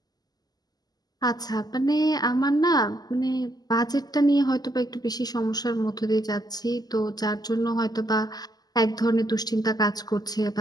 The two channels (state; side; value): late; right; 0.19 ms